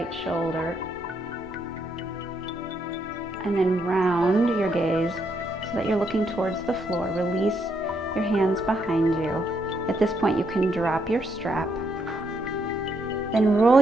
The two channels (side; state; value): both; normal; correlation 0.76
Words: shoulder. And then round your gaze so that you're looking towards the floor. Release your hands behind you. At this point, you can drop your strap. Then roll